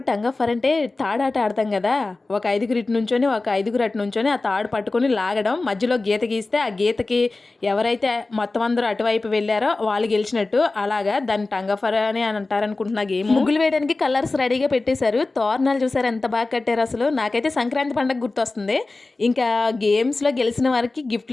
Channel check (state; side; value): quieter; right; 3.3 dB